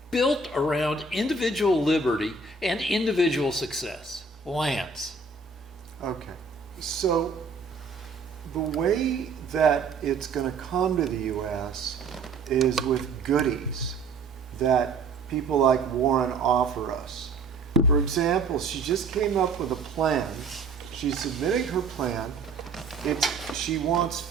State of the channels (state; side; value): quieter; left; 4.2 dB